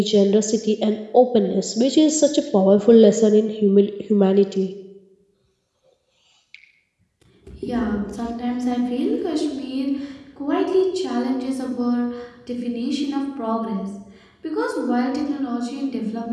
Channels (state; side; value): identical; both; correlation 1.00